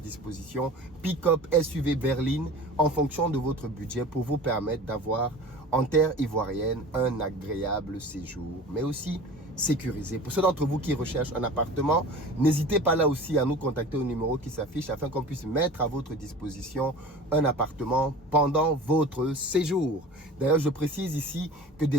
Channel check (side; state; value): both; normal; correlation 0.39